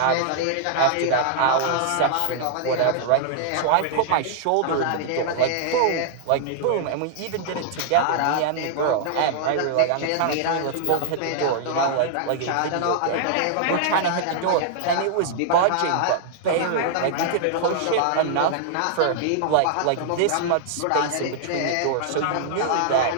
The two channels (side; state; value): both; different; correlation -0.01